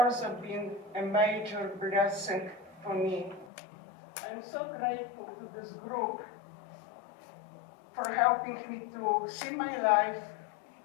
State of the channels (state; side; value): drops out; right; at 3.5 s